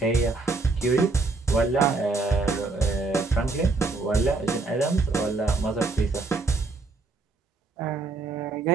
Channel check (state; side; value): quieter; left; 3.6 dB